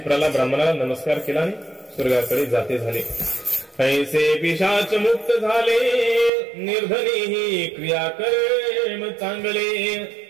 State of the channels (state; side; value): drops out; left; at 6.3 s